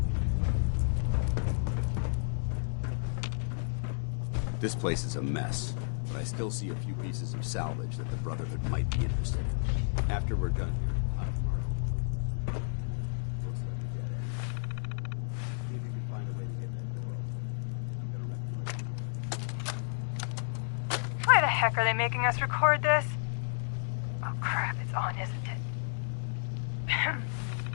This place is a mess, but I still see a few pieces of salvage that the Brotherhood might be interested in. After we're done here, I'll have to mark this place for sweep and retrieve. Looks like a dead end. See if you can find a way to get that door open. I'm gonna reconnoiter the area. Why the heck are they making us record this? Oh crap, it's on, isn't it?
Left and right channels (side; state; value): right; silent; digital silence